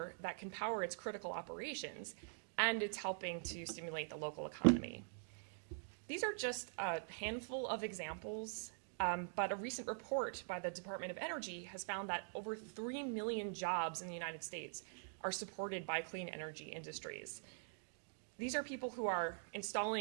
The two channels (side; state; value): left; silent; digital silence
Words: that can power its critical operations, and it's helping to stimulate the local economy. These are just a handful of examples, but a recent report by the Department of Energy has found that over 3 million jobs in the United States are supported by clean energy industries. These are people who are